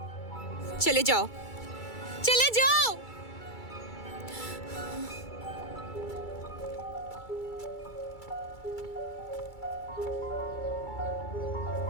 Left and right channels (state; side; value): late; right; 2.3 ms